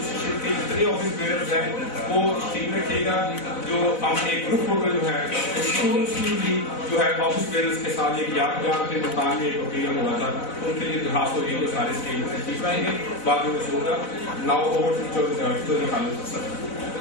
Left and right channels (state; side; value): late; right; 4.0 ms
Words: کے جتنے آفس بیئرز ہیں وہ ٹھیک رکھیے گا. جو ہم ایک گروپ فوٹو جو ہے جو ہے آفس بیئرز کے ساتھ ایک یادگار کے مقام میں ایک اوکیزن ہوا تھا ان کے لیے درخواست ہوگی وہ سارے اسٹیج میں تشریف لائیں گے. بعد میں کچھ ہوگا. ناؤ اوور چودھری خالد اسد